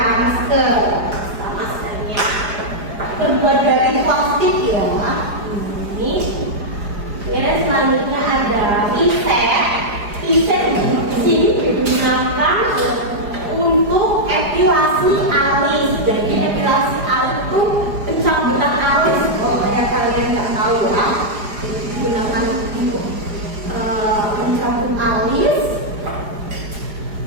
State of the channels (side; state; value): left; late; 4.9 ms